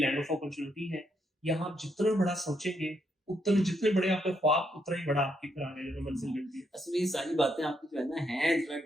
लैंड ऑफ अपॉर्चुनिटी है। यहाँ आप जितना बड़ा सोचेंगे उतना, जितने बड़े आपके ख्वाब उतना ही बड़ा आपकी फिर आगे जो मंजिल मिलती है। असल में ये सारी बातें आपकी जो है ना है थोड़ा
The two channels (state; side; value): normal; both; correlation 0.77